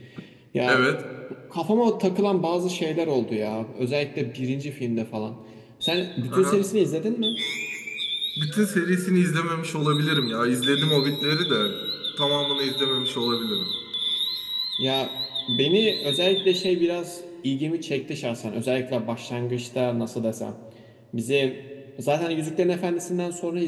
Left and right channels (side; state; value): both; identical; correlation 1.00